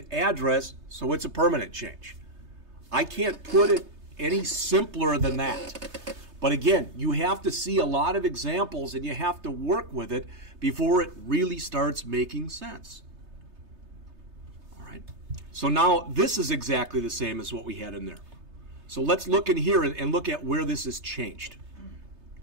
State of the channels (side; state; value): left; late; 3.3 ms